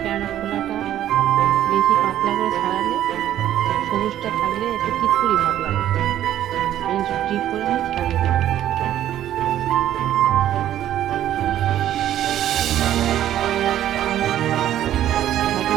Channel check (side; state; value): left; quieter; 11.9 dB